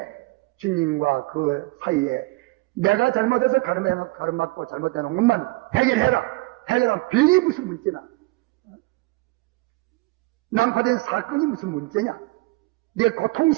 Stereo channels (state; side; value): quieter; left; 21.9 dB